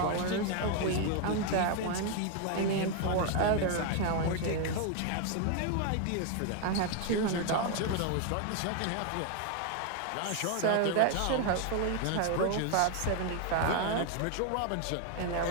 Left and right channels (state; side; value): different; both; correlation 0.01